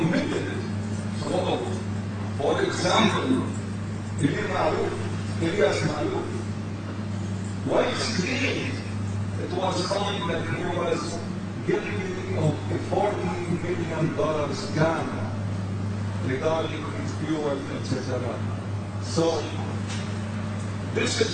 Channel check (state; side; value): identical; both; correlation 1.00